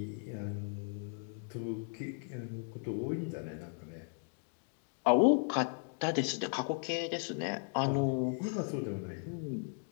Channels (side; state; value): right; silent; 54 dB below the other